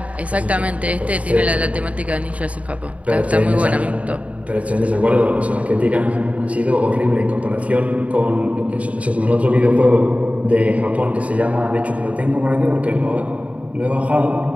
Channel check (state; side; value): late; left; 0.067 ms